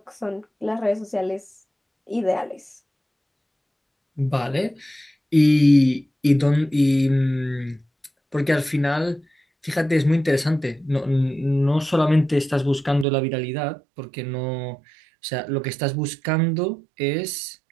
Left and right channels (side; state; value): left; drops out; at 13.1 s